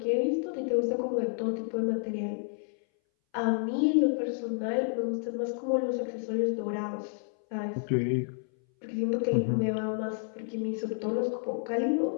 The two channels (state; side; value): silent; right; 58 dB below the other